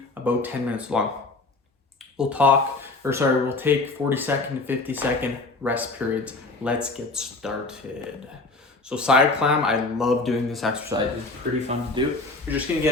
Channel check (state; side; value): quieter; right; 3.3 dB